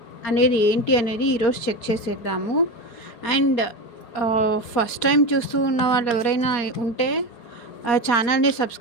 అనేది ఏంటి అనేది ఈరోజు చెక్ చేసేద్దాము. అండ్ ఫస్ట్ టైం చూస్తూ ఉన్న వాళ్ళు ఎవరైనా ఉంటే ఛానల్ని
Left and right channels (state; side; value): late; right; 4.9 ms